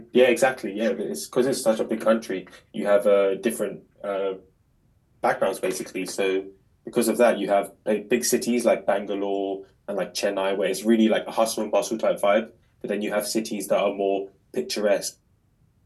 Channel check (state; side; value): identical; both; correlation 1.00